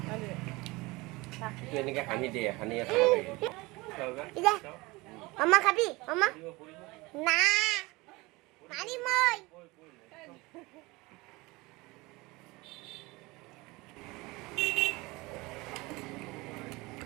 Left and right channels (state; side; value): quieter; left; 22.9 dB